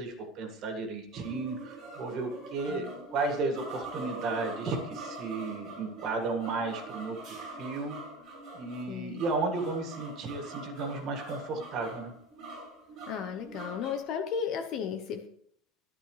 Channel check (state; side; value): normal; both; correlation 0.32